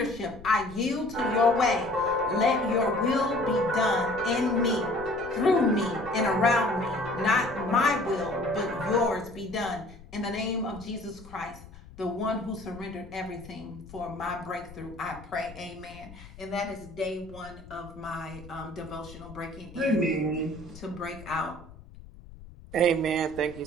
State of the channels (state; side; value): noise; left; rumble, 18 dB below the sound